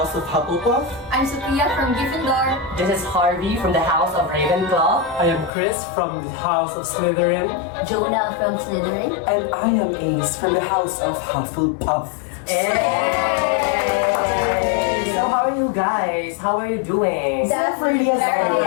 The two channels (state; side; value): drops out; right; at 5.5 s